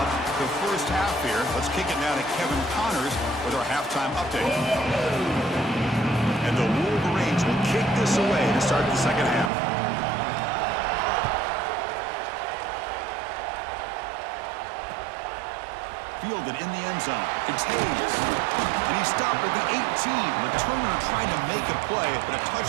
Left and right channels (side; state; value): left; drops out; at 9.5 s